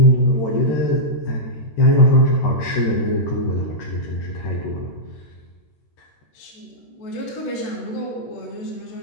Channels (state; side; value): late; right; 14 ms